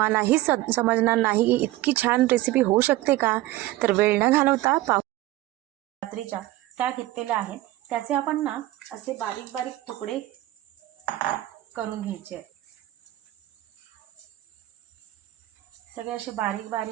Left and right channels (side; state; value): left; quieter; 16.3 dB